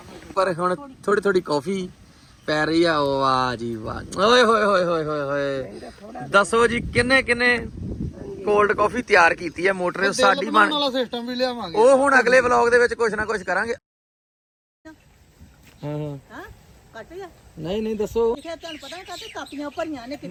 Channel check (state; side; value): identical; both; correlation 1.00